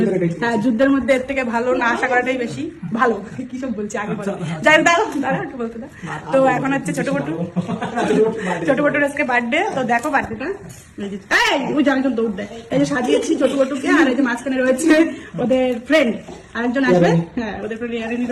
হ্যাঁ, যুদ্ধের মধ্যে এর থেকে ভালো না আশা করাটাই বেশি ভালো। কি সব বলছি আগে বলো, যাই দাঁড়া একটু বলতে দাও। তো এখন হচ্ছে ছোট বটুর আজকে বার্থডে। তো দেখো বার্থডেটা, ওই যে একজন দৌড় দেয়, এই যে সাজিয়েছি ছোট বটুকে। আর এই যে মাঝখানে রয়েছে ওদের ফ্রেন্ড আরেকজন আসবে। হ্যাঁ, ওদের ফ্রেন্ড ইয়ারিনি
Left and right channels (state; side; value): identical; both; correlation 1.00